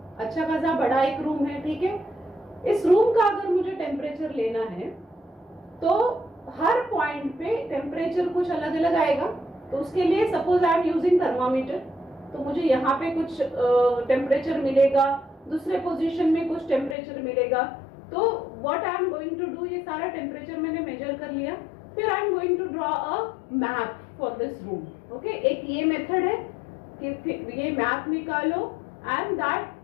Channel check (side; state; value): right; drops out; at 16.9 s